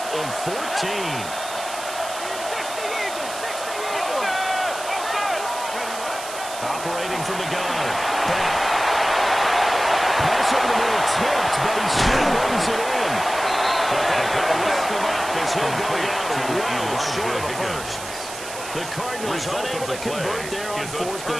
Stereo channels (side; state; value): right; noise; hiss, 11 dB below the sound